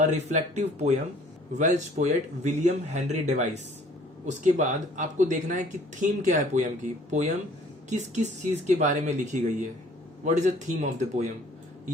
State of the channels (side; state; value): both; normal; correlation 0.55